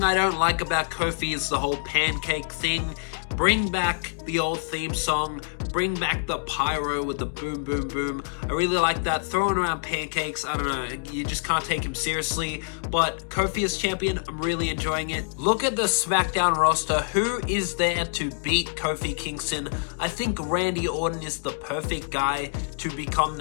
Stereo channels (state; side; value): silent; right; digital silence